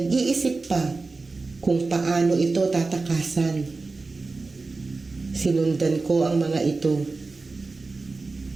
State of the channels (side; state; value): left; quieter; 3.8 dB